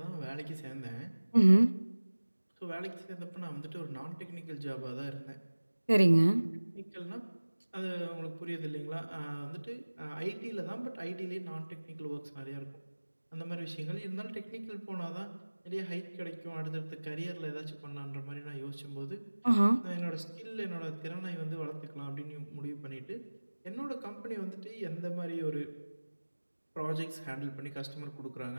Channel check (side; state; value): both; inverted; correlation -1.00